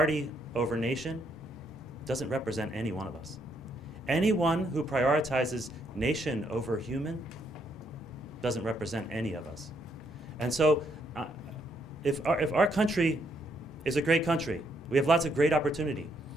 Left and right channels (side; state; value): both; normal; correlation 0.73